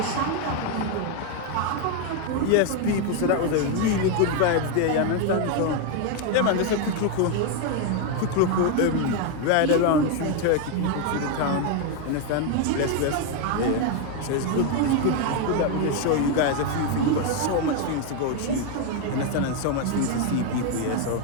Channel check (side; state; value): both; different; correlation 0.01